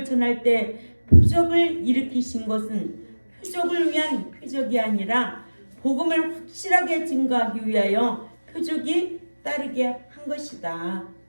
전할 때 표적을 일으키신 것은 표적을 위한 표적이 아니라 복음을 확실하게 증거하기 위하여 표적이 따르게 한 것이다.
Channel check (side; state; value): both; inverted; correlation -1.00